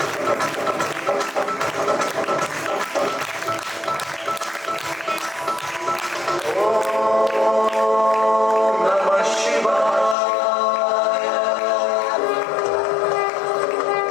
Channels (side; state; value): right; drops out; at 10.2 s